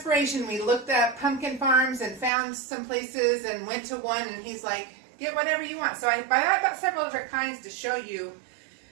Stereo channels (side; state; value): left; drops out; at 2.3 s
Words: we looked up pumpkin farms and found some places and went to one, and he's like, get whatever you want. So I bought several different kinds to show you